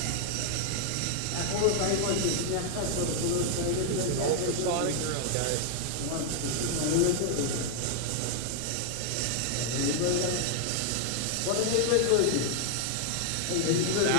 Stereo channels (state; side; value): different; both; correlation 0.00